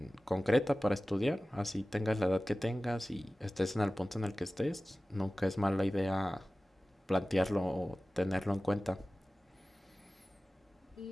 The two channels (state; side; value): normal; both; correlation 0.97